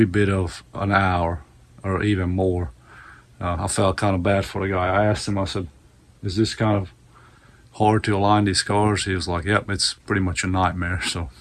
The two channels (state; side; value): identical; both; correlation 1.00